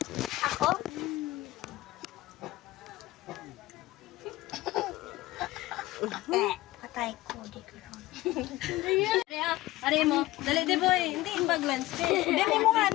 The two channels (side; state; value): right; quieter; 17.7 dB